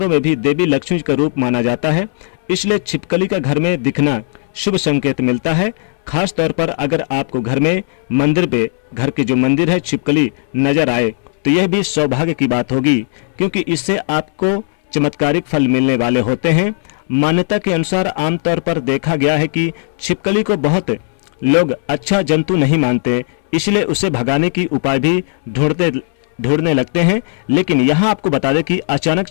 में भी देवी लक्ष्मी का रूप माना जाता है, इसलिए छिपकली का घर में दिखना शुभ संकेत मिलता है। खास तौर पर अगर आपको घर में मंदिर पे घर के जो मंदिर है छिपकली नजर आए तो यह भी सौभाग्य की बात होगी, क्योंकि इससे आपको चमत्कारिक फल मिलने वाले होते हैं। मान्यता के अनुसार आमतौर पर देखा गया है कि छिपकली को बहुत लोग अच्छा जंतु नहीं मानते, इसलिए उसे भगाने की उपाय भी ढूंढने लगते हैं। लेकिन यहाँ आपको बता दें कि अचानक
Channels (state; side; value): silent; right; 66 dB below the other